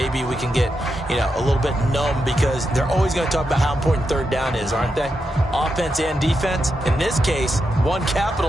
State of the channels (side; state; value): both; normal; correlation 0.85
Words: we can get, a little bit numb because they're always going to talk about how important 3rd down is, aren't they? Offense and defense. In this case, one